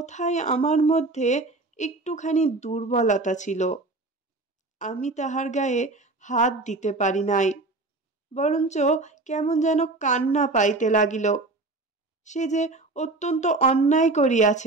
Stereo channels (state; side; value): quieter; left; 3.2 dB